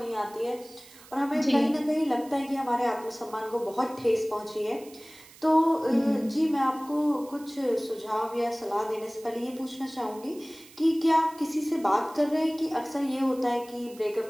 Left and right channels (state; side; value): noise; right; hiss, 22 dB below the sound